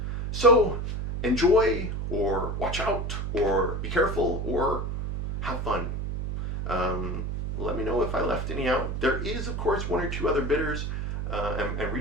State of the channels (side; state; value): right; noise; hum, 3 dB below the sound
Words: So enjoy, or watch out, or be careful, or have fun. Let me know if I left any out. There is, of course, one or two other bitters and